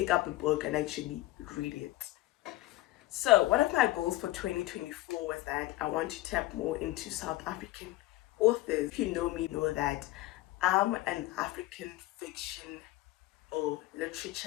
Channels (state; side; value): quieter; right; 17.8 dB